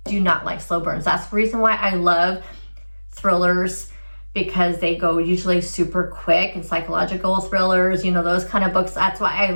do not like slow burns. That's the reason why I love thrillers, because they go usually super quick, and psychological thrillers, those kind of books. That's why I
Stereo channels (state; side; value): inverted; both; correlation -1.00